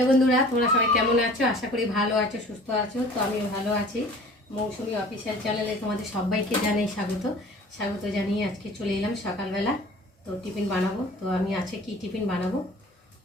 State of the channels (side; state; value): both; normal; correlation 0.46